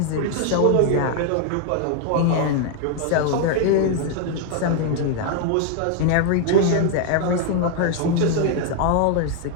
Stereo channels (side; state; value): both; different; correlation 0.00